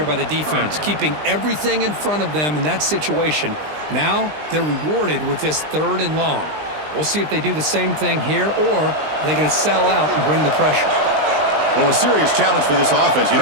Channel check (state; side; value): late; left; 20 ms